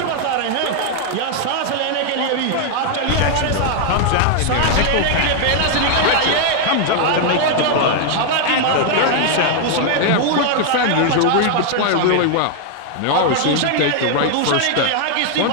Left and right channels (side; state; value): both; different; correlation 0.00